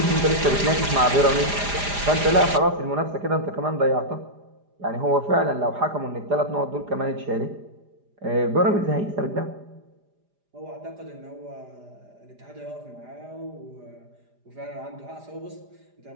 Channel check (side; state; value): left; late; 4.9 ms